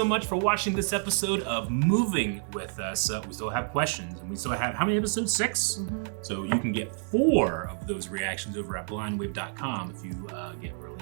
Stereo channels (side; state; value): left; silent; digital silence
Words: much for watching this episode of Moving with us. We still have questions, and we still have, how many episodes? 6? So you can get 4 of those reactions over at blindwave.com if you get